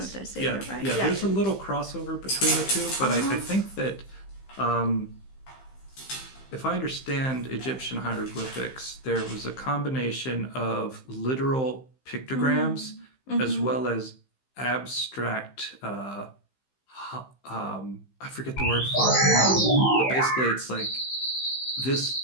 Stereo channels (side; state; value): right; late; 15 ms